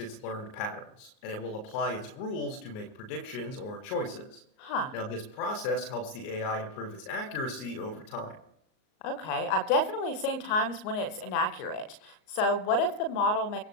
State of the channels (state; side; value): late; right; 38 ms